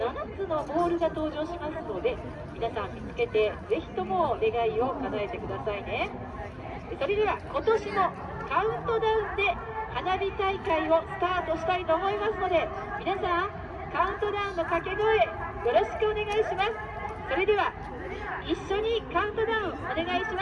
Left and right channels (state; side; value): identical; both; correlation 1.00